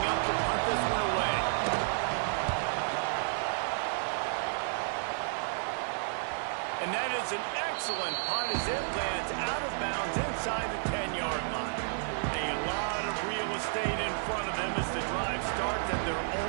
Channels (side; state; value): left; silent; digital silence